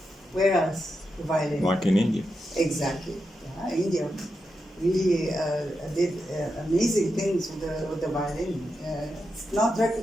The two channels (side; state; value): both; normal; correlation 0.87